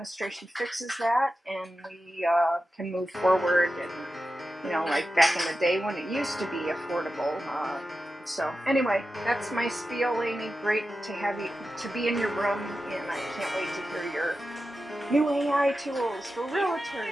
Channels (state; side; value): normal; both; correlation 0.92